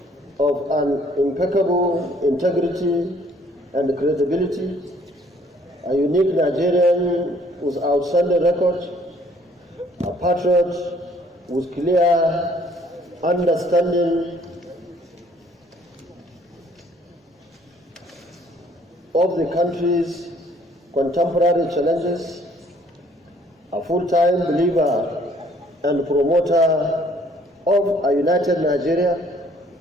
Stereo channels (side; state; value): both; normal; correlation 0.61